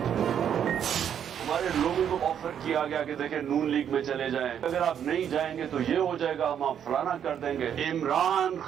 हमारे लोगों को ऑफर किया गया कि देखें नून लीग में चले जाएं, अगर आप नहीं जाएंगे तो ये हो जाएगा, हम आप फलाना कर देंगे। इमरान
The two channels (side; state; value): left; quieter; 8.9 dB